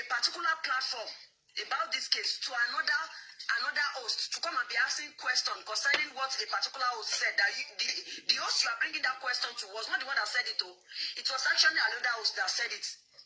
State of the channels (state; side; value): identical; both; correlation 1.00